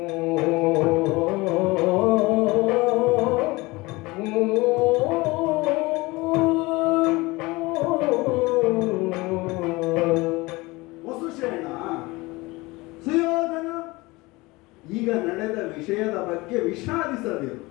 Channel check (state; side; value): quieter; right; 22.4 dB